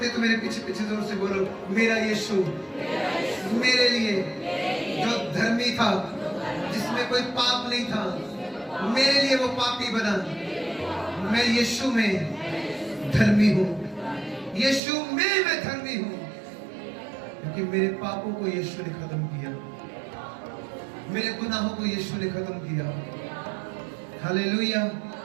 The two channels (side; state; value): left; drops out; at 14.8 s